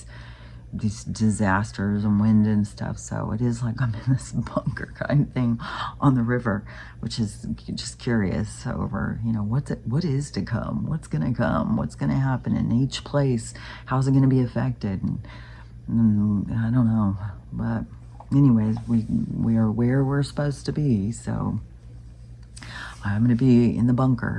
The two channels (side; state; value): both; identical; correlation 1.00